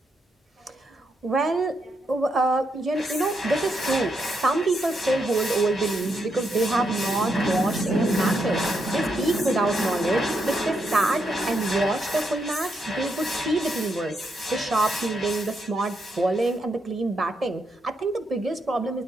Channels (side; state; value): both; normal; correlation 0.80